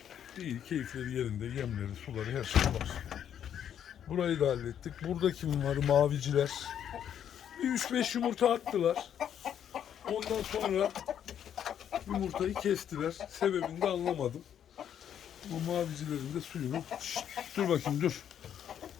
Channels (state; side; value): quieter; right; 9.4 dB